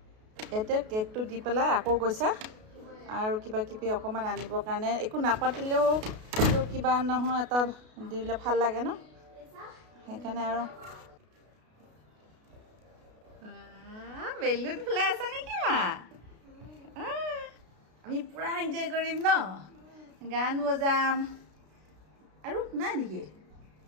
এতে কেকটো দি পেলাই আকৌ গৈছা আৰু কিবা কিবি অকণমান আনিবৰ কাৰণে একো নাপাতিলেও কিবা নহয় এটা দিলে ভাল লাগে ন সেইকাৰণে আৰু বেলুন ফুলাই আছা নেকি মা আমি পুৰা এনজয় কৰিম ন গান বজাম আৰু নাই নেকি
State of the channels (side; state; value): left; late; 33 ms